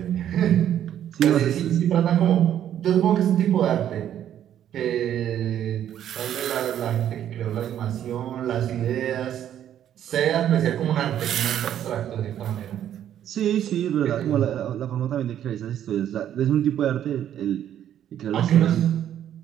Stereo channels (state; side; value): quieter; left; 10.6 dB